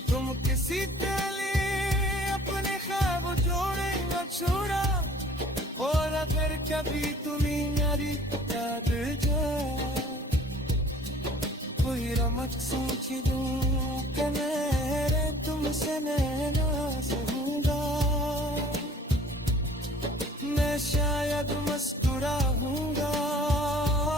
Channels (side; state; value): both; normal; correlation 0.52